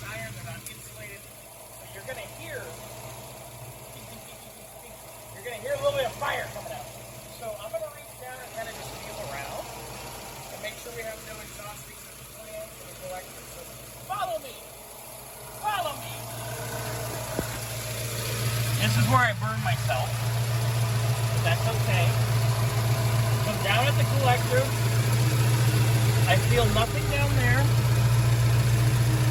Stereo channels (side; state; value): both; identical; correlation 1.00